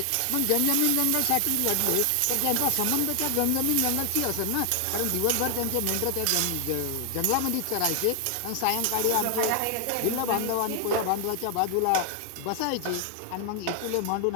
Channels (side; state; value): both; different; correlation 0.00